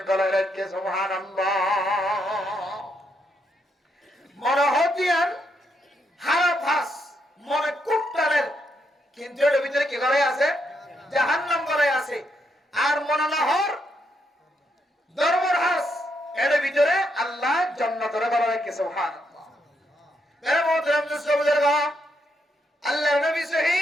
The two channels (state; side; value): normal; both; correlation 0.78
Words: গলায় রাখে। সুবহানাল্লাহ। মনে হতিয়ার হারাফাস মনে কুট্টারের, কিন্তু এর ভিতরে কি করে আছে? জাহান্নাম করে আছে। আর মনে না হর ধর্মের হাস, এর ভিতরে আল্লাহ জান্নাতের গলায় রাখে। সুবহানাল্লাহ। মেরে মোহতরম মুসলিম, আল্লাহর নবী